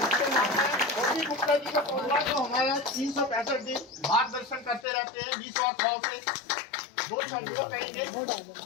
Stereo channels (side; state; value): right; drops out; at 4.9 s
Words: गुप्ता जी का परिवार जो हमारा 365 दिन मार्गदर्शन करते रहते हैं, 20 और 100 से 2 शब्दों कहेंगे।